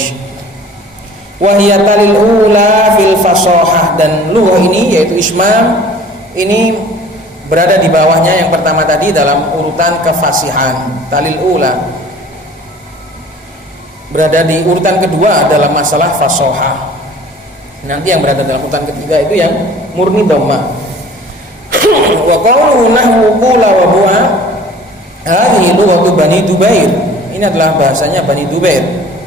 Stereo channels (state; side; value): normal; both; correlation 0.47